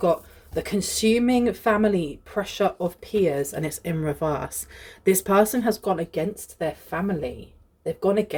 The consuming family pressure of peers, and it's in reverse. This person has gone against their family. They've gone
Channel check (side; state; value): both; identical; correlation 1.00